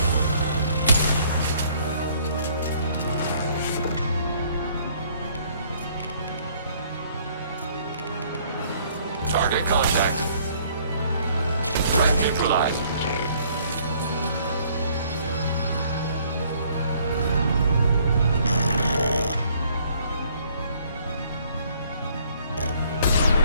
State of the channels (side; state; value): both; inverted; correlation -0.61